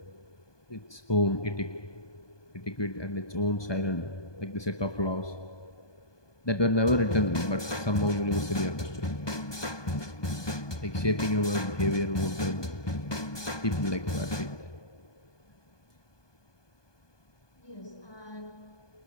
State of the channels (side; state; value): right; late; 1.2 ms